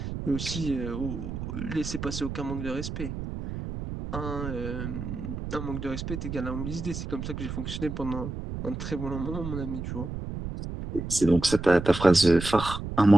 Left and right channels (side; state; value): right; noise; rumble, 6 dB below the sound